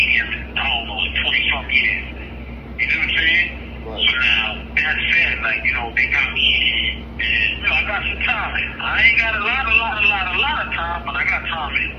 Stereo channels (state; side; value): identical; both; correlation 1.00